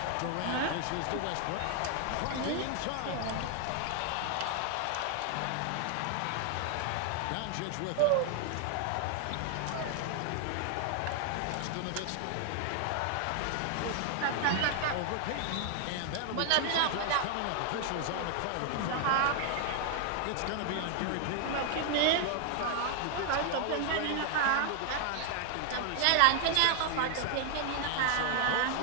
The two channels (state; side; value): different; both; correlation 0.00